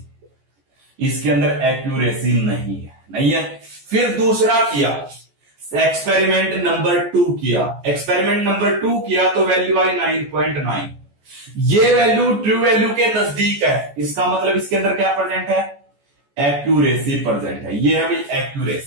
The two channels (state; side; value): late; left; 14 ms